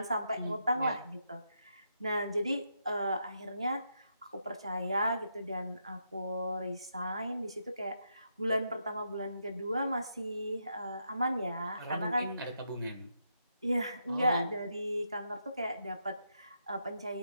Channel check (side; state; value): both; inverted; correlation -0.81